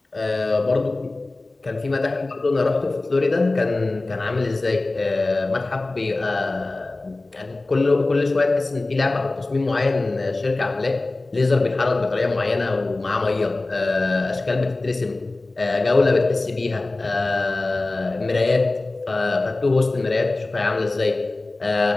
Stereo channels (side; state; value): right; quieter; 3.1 dB